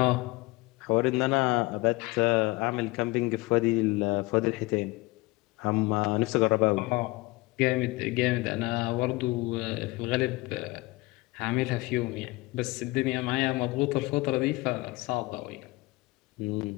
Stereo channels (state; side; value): quieter; right; 22.5 dB